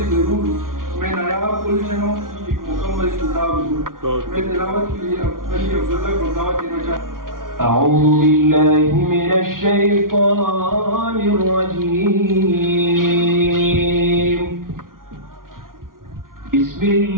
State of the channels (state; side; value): late; left; 0.91 ms